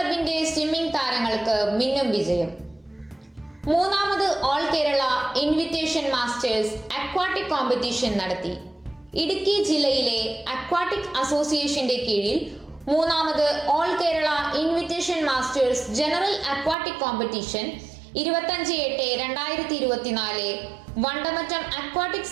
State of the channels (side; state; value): left; drops out; at 16.8 s